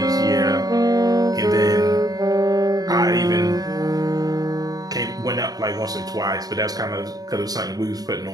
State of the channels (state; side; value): late; left; 0.18 ms